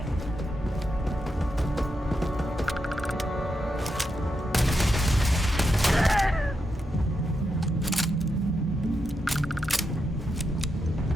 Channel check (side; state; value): both; normal; correlation 0.85